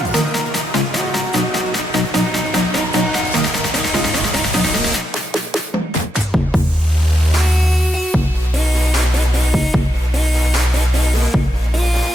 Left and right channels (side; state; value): both; normal; correlation 0.83